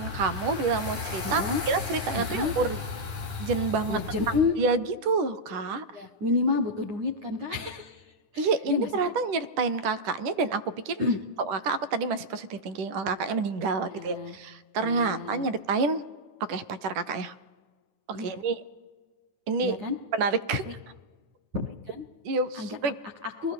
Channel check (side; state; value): left; late; 10 ms